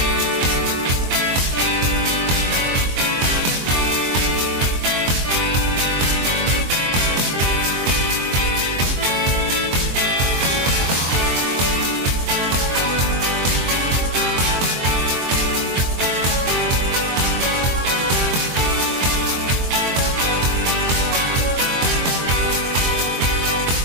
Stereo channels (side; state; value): left; late; 23 ms